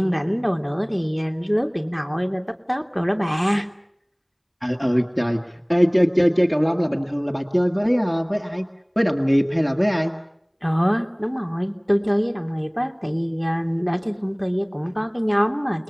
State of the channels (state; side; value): identical; both; correlation 1.00